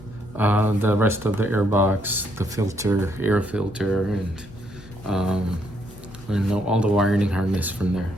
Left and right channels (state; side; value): normal; both; correlation 0.73